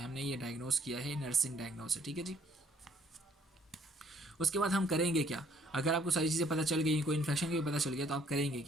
हमने ये डायग्नोस किया है, नर्सिंग डायग्नोस है, ठीक है जी। उसके बाद हम करेंगे क्या, अगर आपको सारी चीज़ें पता चल गई, कोई इन्फेक्शन भी पता चल गया, तो आप करेंगे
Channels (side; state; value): both; normal; correlation 0.63